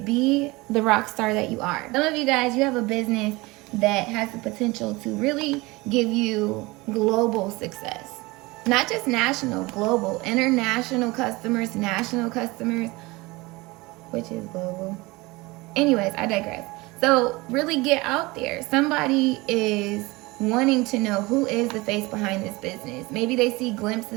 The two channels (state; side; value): quieter; left; 22.8 dB